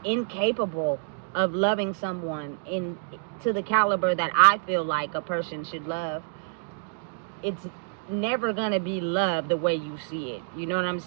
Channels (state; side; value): silent; left; digital silence